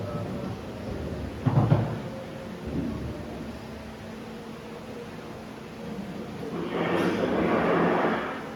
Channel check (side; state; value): both; identical; correlation 1.00